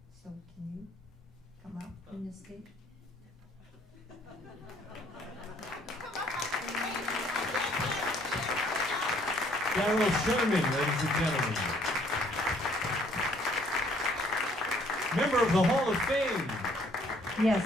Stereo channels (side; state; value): both; normal; correlation 0.63